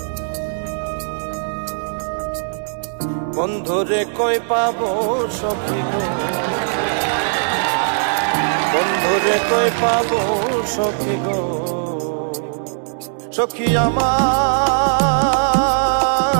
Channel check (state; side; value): silent; left; digital silence